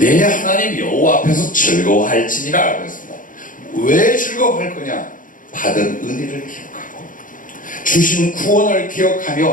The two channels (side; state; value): right; late; 0.39 ms